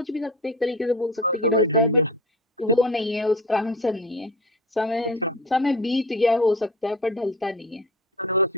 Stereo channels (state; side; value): normal; both; correlation 0.33